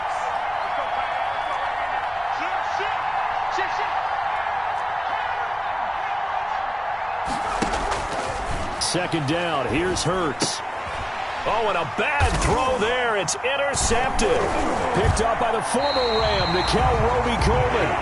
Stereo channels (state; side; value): identical; both; correlation 1.00